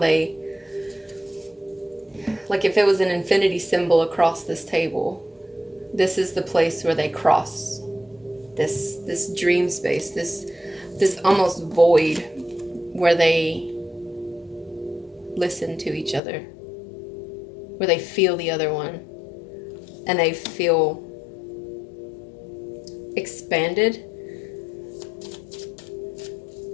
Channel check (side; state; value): right; drops out; at 16.2 s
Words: like if it was an infinity symbol across this table, this is the place where they cross this dream space, this almost void where they listen to each other, where they feel the other one, and they feel expanded